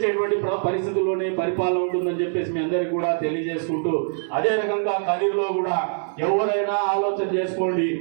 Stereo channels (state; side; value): silent; left; digital silence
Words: పరిస్థితుల్లోనే పరిపాలన ఉంటుందని చెప్పేసి మీ అందరికీ కూడా తెలియజేసుకుంటూ అదే రకంగా కదిరిలో కూడా ఎవరైనా ఆలోచన చేసుకోండి.